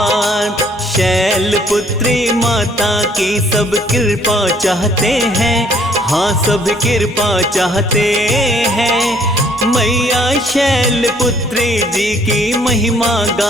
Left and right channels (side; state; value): both; normal; correlation 0.62